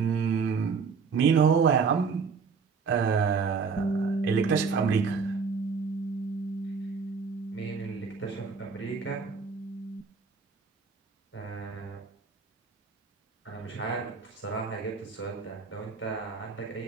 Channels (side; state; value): left; quieter; 5.3 dB